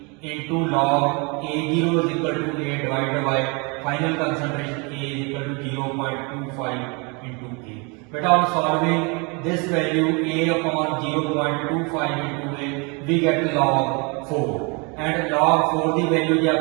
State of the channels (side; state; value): left; quieter; 31.0 dB